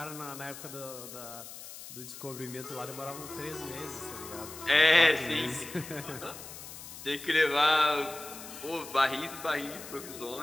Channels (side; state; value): left; noise; hiss, 13 dB below the sound